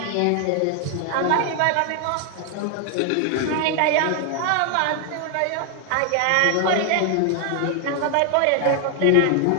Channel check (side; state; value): both; different; correlation 0.00